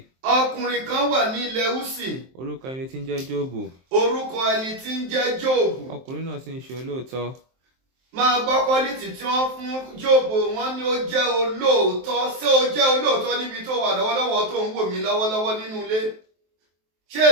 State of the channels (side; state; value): left; late; 23 ms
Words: Ọkùnrin kan wà ní ilẹ̀ Úsì. Orúkọ ẹni tí ń jẹ́ Jóòbù. Orúkọ ẹni tí ń jẹ́ Jóòbù. Ọkùnrin náà sì ń ṣe olóòótọ́. Máa gbọ́ quality tí wọ́n fún Jóòbù, wọ́n ní ó jẹ́ olóòótọ́. Ṣé ó jẹ́ olóòótọ́ níbi tó wà lọ́wọ́lọ́wọ́ tó ń wò mí lọ́wọ́lọ́wọ́ nínú ilé? Ṣé